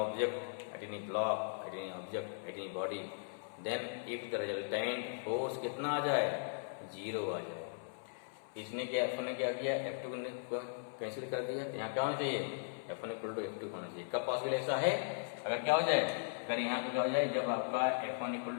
at any block, at any object, at any body, then if the resultant force कितना आ जाए, 0 आ जाए। इसने क्या, F1 ने क्या किया, F2 को कैंसिल कर दिया, तो यहाँ क्या होना चाहिए, F1 इक्वल टू F2 होना चाहिए। कब पॉसिबल ऐसा है, अगर क्या हो जाए, अगर यहाँ पे क्या हो जाए, जब आपका F1 इक्वल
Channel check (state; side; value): silent; right; 52 dB below the other